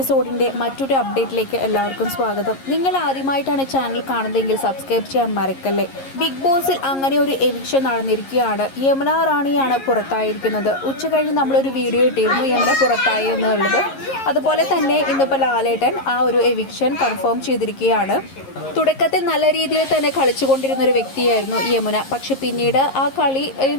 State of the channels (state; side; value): late; right; 11 ms